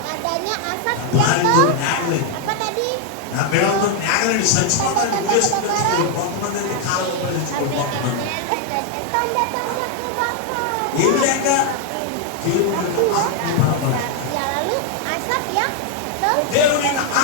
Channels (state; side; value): different; both; correlation 0.00